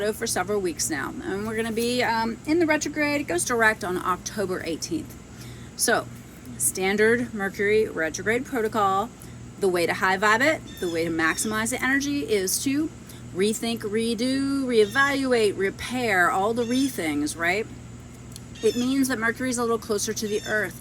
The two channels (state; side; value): identical; both; correlation 1.00